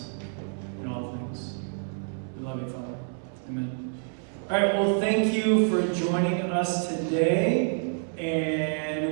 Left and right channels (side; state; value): left; silent; 59 dB below the other